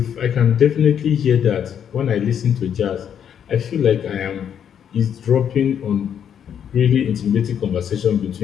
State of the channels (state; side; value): quieter; right; 8.6 dB